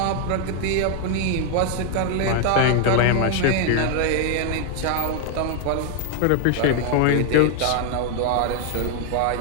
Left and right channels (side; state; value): both; different; correlation 0.00